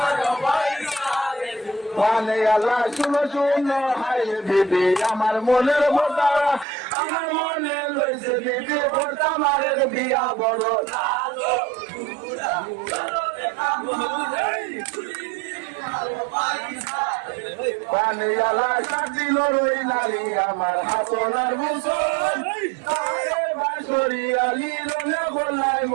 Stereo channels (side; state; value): left; drops out; at 6.7 s